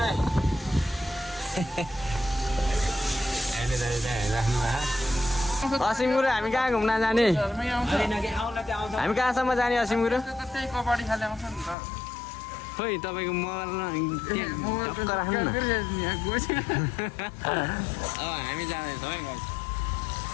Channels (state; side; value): drops out; right; at 11.8 s